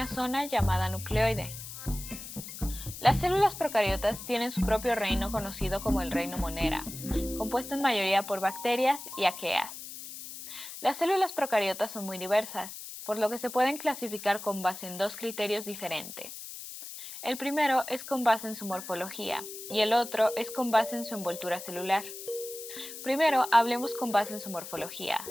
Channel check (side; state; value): left; noise; hiss, 11 dB below the sound